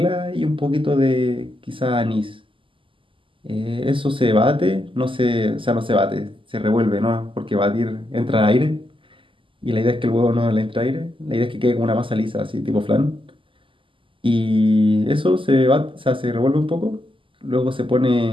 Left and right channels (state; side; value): late; left; 0.25 ms